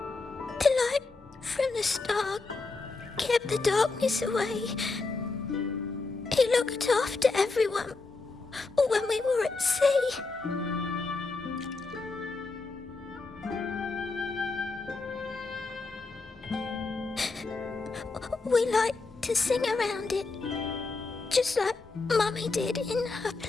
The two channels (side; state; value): right; quieter; 3.8 dB